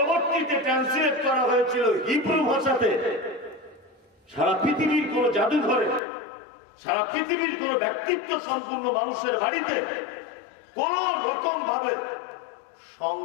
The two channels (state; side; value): drops out; right; at 6.0 s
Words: ট্রান্সলেট করা হয়েছিল হিব্রু ভাষাতে। সারা পৃথিবীর কোন জাদুঘরে, সারা পৃথিবীর কোন ব্যক্তিত্ব সম্পূর্ণ মানুষের বাড়িতে কোন রকম ভাবে